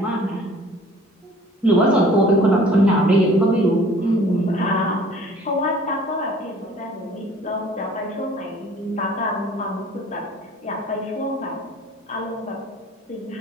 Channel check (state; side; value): normal; both; correlation 0.51